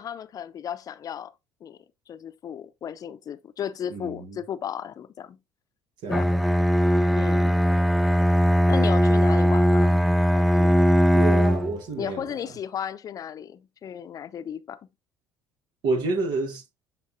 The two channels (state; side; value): normal; both; correlation 0.94